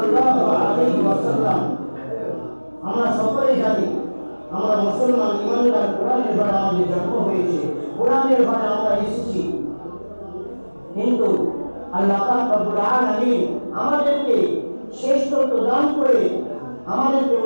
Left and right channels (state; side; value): inverted; both; correlation -1.00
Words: আলাইহি ওয়াসাল্লাম। আমরা সকলেই জানি আমরা মুসলমান ইমানদার, কোরআনের দ্বারা আমাদের জন্ম হয়েছে, কোরআনের দ্বারা আমরা এসেছি, কিন্তু আল্লাহ পাক রব্বুল আলামিন আমাদেরকে শ্রেষ্ঠত্ব দান করে আমাদেরকে